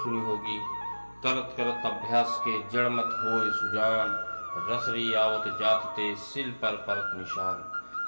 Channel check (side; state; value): both; inverted; correlation -1.00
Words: सुनी होगी, करत करत अभ्यास के जड़ मत होए सुजान, रसरी आवत जात ते सिल पर परत निशान।